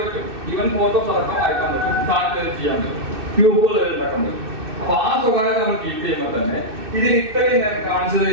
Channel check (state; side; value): late; left; 2.6 ms